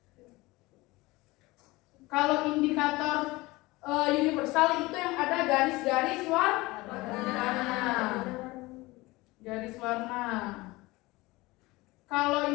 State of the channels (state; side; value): quieter; right; 21.3 dB